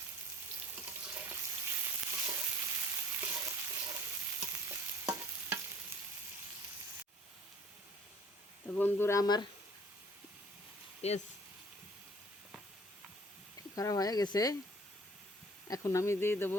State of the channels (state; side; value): normal; both; correlation 0.53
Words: তো বন্ধুরা আমার পেঁয়াজ খারাপ হয়ে গেছে, এখন আমি দিয়ে